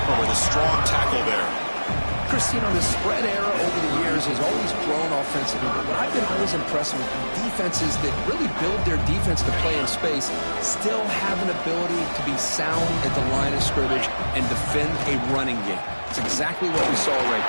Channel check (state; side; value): inverted; both; correlation -1.00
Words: with a strong tackle there. Chris, you know, the spread era over the years has always grown offensively, but what I've been always impressed with defenses that really build their defense to play in space still have an ability to be sound at the line of scrimmage and defend a running game. It's exactly what we saw right